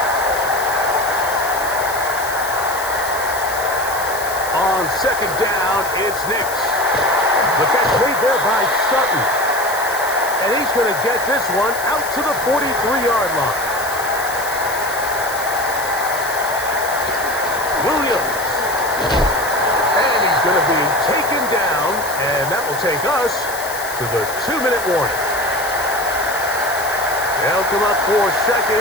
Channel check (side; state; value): left; noise; hiss, 10 dB below the sound